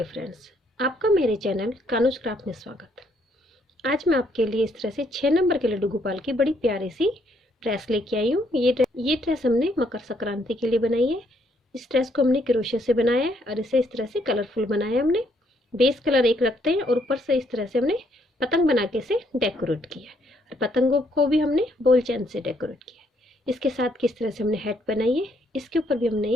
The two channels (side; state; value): both; normal; correlation 0.70